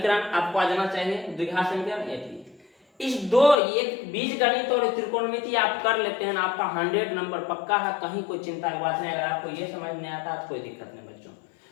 आपको आ जाना चाहिए, द्विघात समीकरण एपी। इस 2 एक बीजगणित और त्रिकोणमिति आप कर लेते हैं, आपका 100 नंबर पक्का है, कहीं कोई चिंता की बात नहीं। अगर आपको ये समझ नहीं आता तो कोई दिक्कत नहीं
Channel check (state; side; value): drops out; right; at 3.6 s